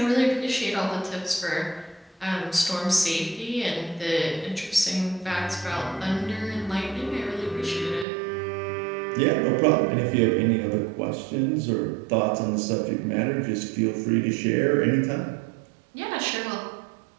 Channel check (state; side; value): drops out; left; at 8.1 s